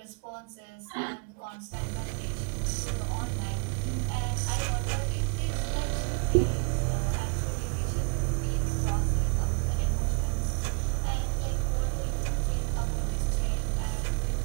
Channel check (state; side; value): quieter; left; 35.1 dB